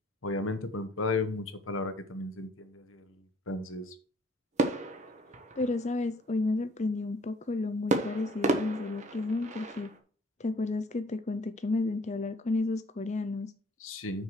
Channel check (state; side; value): normal; both; correlation 0.57